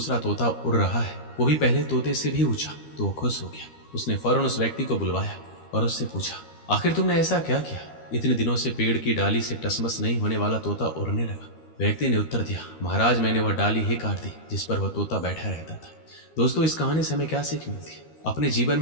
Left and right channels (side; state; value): right; late; 13 ms